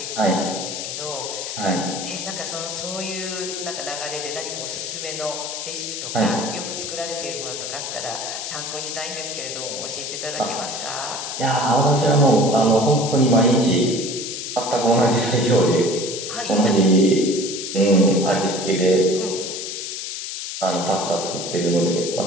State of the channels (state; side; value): noise; left; hiss, 6 dB below the sound